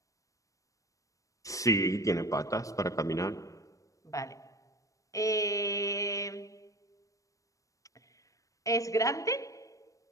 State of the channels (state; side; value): late; right; 0.16 ms